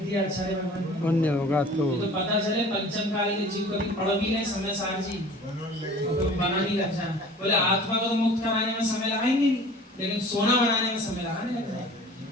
आचार्य भगवान? पुण्य होगा तो पता चले पंचम काल के जीव कभी पढ़ भी नहीं समय सार जी तो बना नहीं लग जाए। बोले आत्मा को तो मुक्त कराने में समय लगाएंगे नहीं लेकिन सोना बनाने में समय लगाने लग जाए।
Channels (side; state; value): both; normal; correlation 0.45